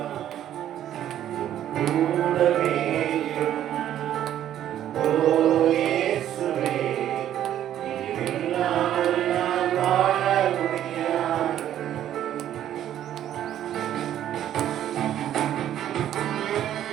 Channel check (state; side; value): quieter; left; 11.3 dB